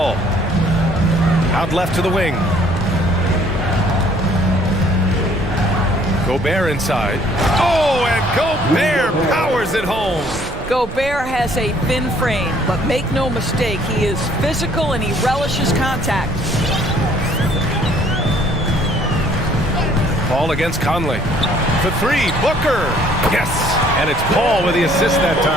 Out left to the wing. Gobert inside. Oh, and Gobert powers it home. Gobert has a thin frame, but make no mistake, he is physical and he relishes contact. Paul against Conley. For 3, Booker. Yes, and it's Paul with the assist that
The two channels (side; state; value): right; noise; rumble, 11 dB below the sound